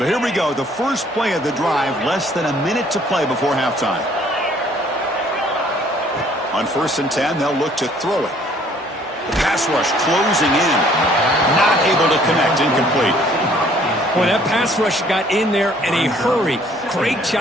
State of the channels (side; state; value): both; normal; correlation 0.59